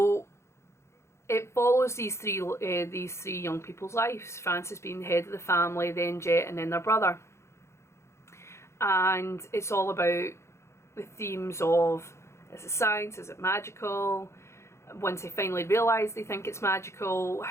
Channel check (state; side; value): late; right; 0.13 ms